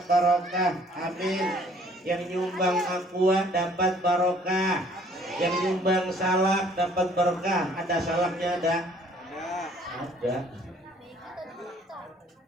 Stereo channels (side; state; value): both; normal; correlation 0.58